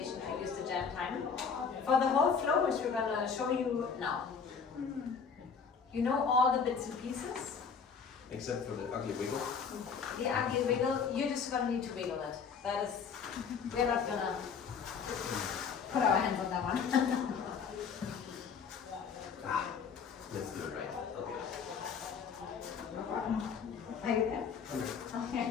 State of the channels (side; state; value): right; quieter; 6.1 dB